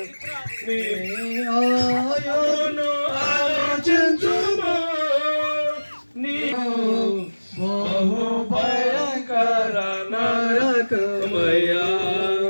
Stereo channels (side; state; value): both; inverted; correlation -1.00